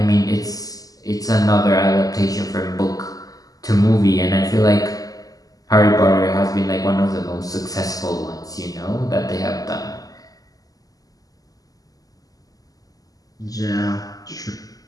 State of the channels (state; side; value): late; right; 0.17 ms